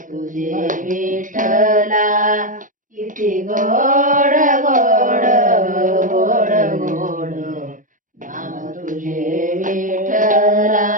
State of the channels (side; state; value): left; late; 0.38 ms